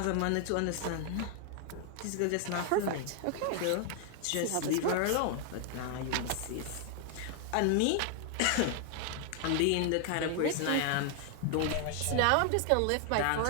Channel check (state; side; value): different; both; correlation 0.00